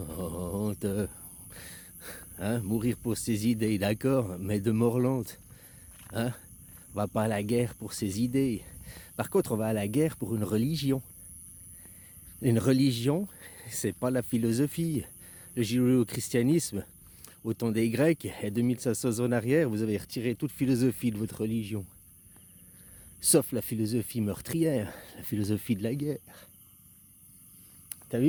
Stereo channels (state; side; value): identical; both; correlation 1.00